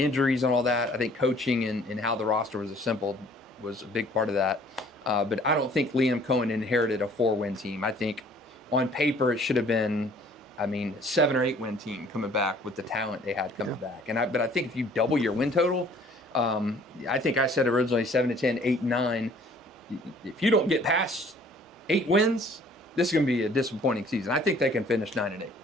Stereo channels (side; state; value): both; normal; correlation 0.55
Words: and all that. I think coaching and how the roster was assembled was a big part of that. But I don't think Liam Cohen inherited a 4-win team. I think on paper it should have been, 7 or 8 win team coming back with the talent they had coming back. But I think if you double your win total, I think I said originally 7 to 10, 8, 9. If you don't get past 8 wins, this is going to be a disappointing season. I think they can finish 9 and 8.